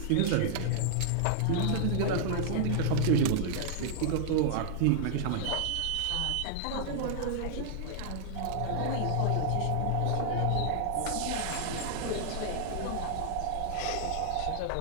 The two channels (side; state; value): both; different; correlation -0.01